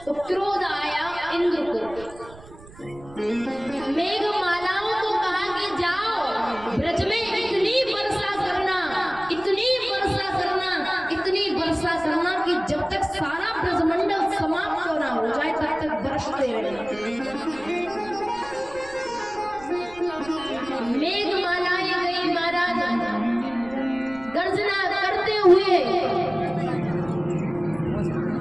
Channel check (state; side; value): noise; right; rumble, 20 dB below the sound